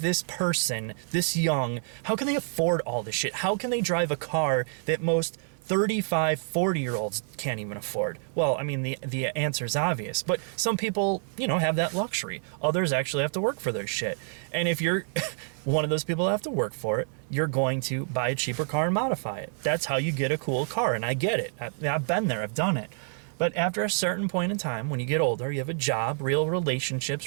person, this young, how can they afford all this shit? How can they drive a car that most 35, 40-year-olds can't even afford? Well, I mean, the answer is obvious, but some people, you know, have that luxury. Others actually have to work for their shit. And if you're one of those people that have to work for it, you're going to buy a cheaper car and modify it. That's how you get a cool car, and I get it. I've been there, I've done it. But after a certain point in time, when you get older, you have a job, real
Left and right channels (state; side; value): silent; left; 59 dB below the other